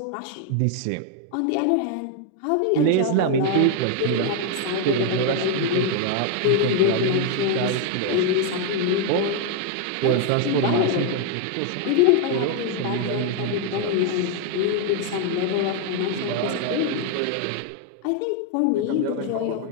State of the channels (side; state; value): both; different; correlation 0.01